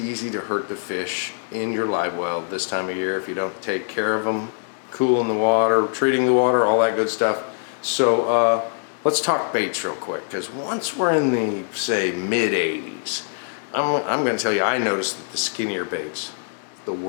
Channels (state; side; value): silent; right; 63 dB below the other